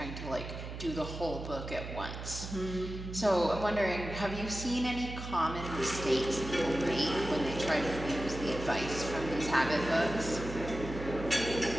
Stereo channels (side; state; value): right; noise; hum, 8 dB below the sound